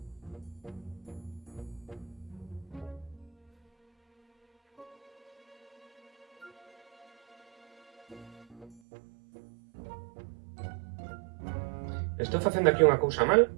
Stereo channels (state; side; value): drops out; left; at 8.8 s